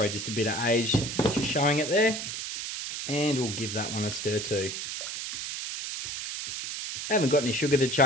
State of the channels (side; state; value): right; noise; hiss, 6 dB below the sound